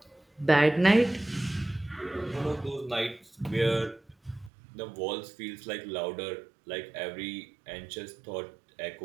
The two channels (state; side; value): drops out; left; at 4.5 s